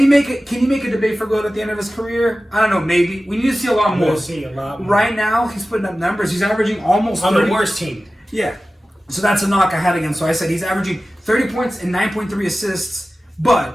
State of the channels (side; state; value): both; normal; correlation 0.95